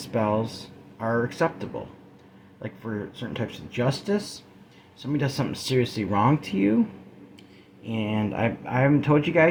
are acceptable. Like for certain types of justice, somebody does something seriously wrong to you, and I haven't told you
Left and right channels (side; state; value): both; identical; correlation 1.00